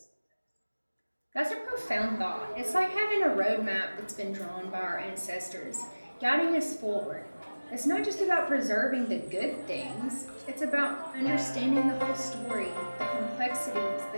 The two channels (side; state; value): both; inverted; correlation -1.00